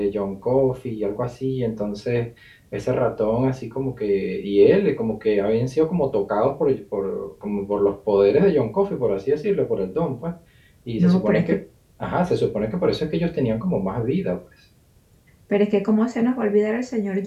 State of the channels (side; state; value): both; identical; correlation 1.00